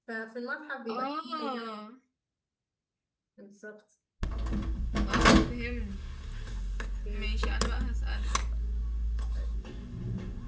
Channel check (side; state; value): both; identical; correlation 1.00